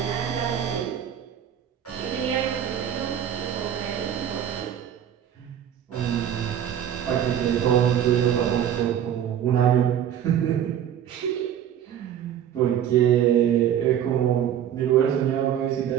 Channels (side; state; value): left; quieter; 9.9 dB